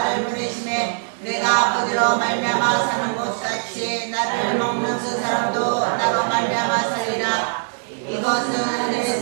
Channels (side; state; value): left; silent; digital silence